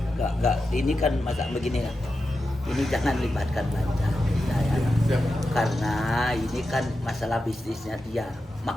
Nggak. Ini kan masa begini ya. Ini jangan libatkan Banjar. Karena ini kan masalah bisnisnya dia.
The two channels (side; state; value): both; normal; correlation 0.90